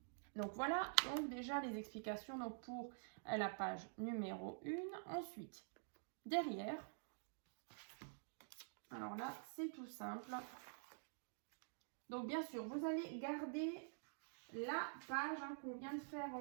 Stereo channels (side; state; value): left; silent; digital silence